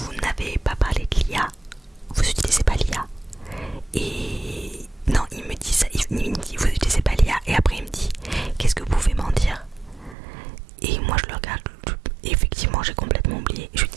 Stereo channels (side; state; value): left; drops out; at 10.2 s